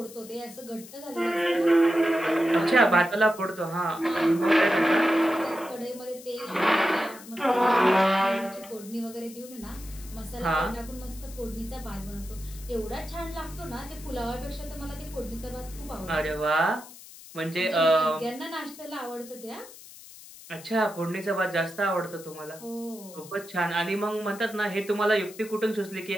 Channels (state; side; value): noise; left; hiss, 18 dB below the sound